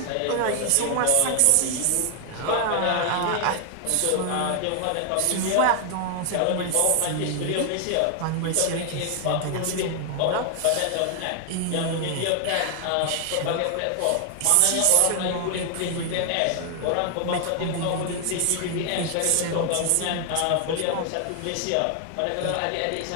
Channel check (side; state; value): both; different; correlation 0.00